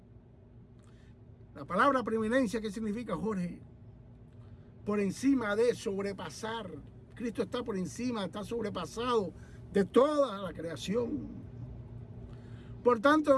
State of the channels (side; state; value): both; identical; correlation 1.00